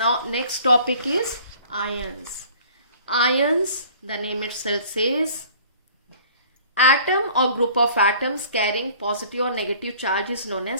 next topic is ions. Ions, the name itself says, atom और group of atoms carrying positive और negative charge is known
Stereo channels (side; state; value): both; inverted; correlation -0.51